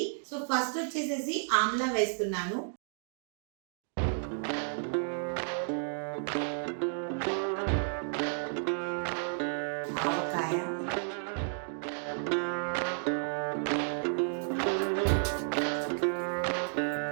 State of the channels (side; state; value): left; silent; digital silence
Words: సో ఫస్ట్ వచ్చేసేసి ఆమ్లా వేస్తున్నాను. ఆవకాయ,